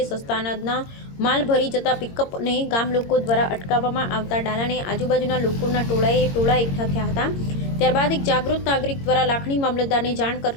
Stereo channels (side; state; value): right; late; 22 ms